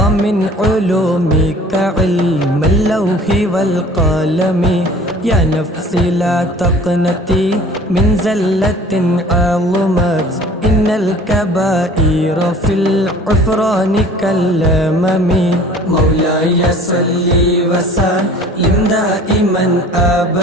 علومك علم اللوح والقلم. يا نفسي لا تقنطي من زلة عظمت إن الكبائر في العفران كالأمم. مولاي صل وسلم دائما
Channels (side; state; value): both; normal; correlation 0.47